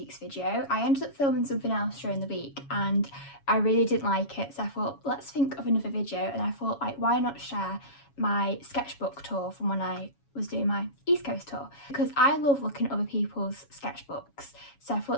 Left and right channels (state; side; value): late; right; 7.2 ms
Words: video. I ended up filming something else during the week and I really didn't like it, so I thought let's think of another video, and I thought like why not share my sketchbook tour from when I was doing my East Coast tour, because I love looking at other people's sketchbooks, so I thought